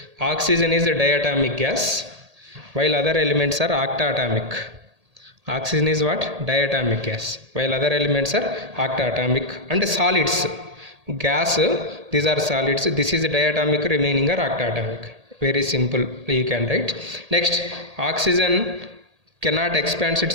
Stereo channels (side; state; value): left; late; 1.8 ms